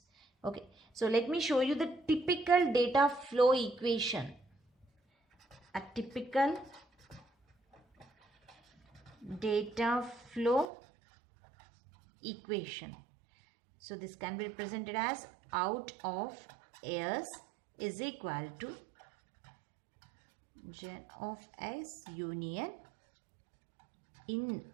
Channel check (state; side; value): drops out; left; at 10.7 s